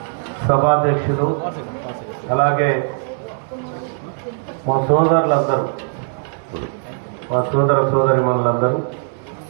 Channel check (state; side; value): silent; left; 63 dB below the other